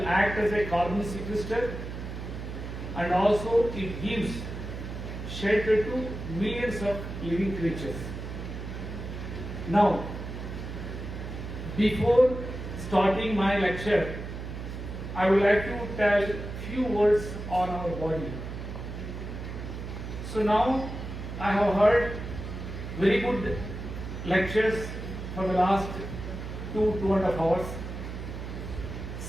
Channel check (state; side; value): noise; right; hum, 7 dB below the sound